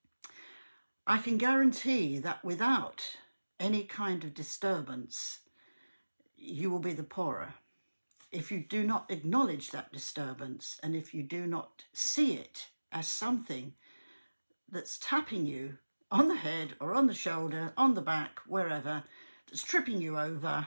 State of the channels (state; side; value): inverted; both; correlation -1.00